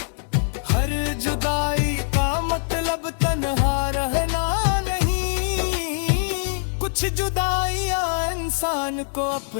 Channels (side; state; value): right; silent; digital silence